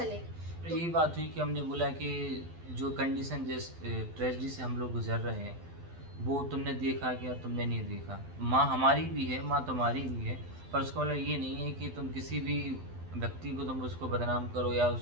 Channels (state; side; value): late; left; 12 ms